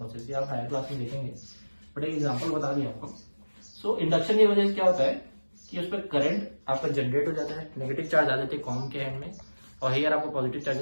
ये आप हायर क्लास में देखेंगे, बट एक एग्जाम्पल बता दिया आपको. सो इंडक्शन की वजह से क्या होता है कि उस पर करंट आपका जनरेट हो जाता है, नेगेटिव चार्ज आ जाते हैं कॉम के हैंड में, और हेयर आपको पॉजिटिव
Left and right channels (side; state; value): both; inverted; correlation -1.00